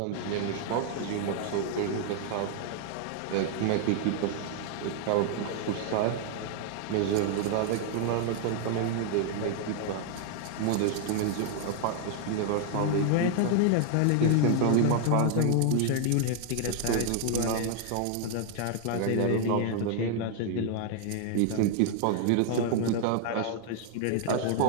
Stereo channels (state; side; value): different; both; correlation 0.00